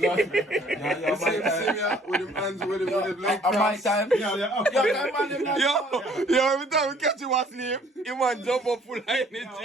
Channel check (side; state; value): both; normal; correlation 0.58